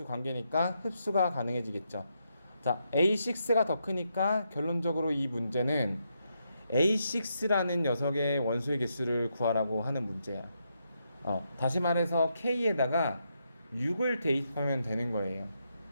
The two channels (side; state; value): both; inverted; correlation -0.81